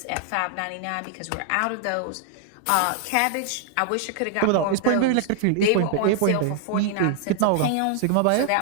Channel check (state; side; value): different; both; correlation 0.00